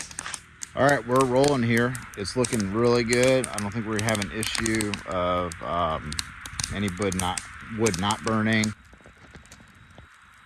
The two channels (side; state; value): both; identical; correlation 1.00